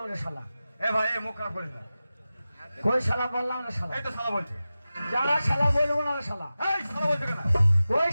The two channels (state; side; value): inverted; both; correlation -0.95